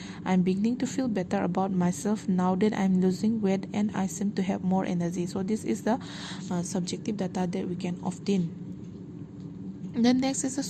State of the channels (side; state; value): both; identical; correlation 1.00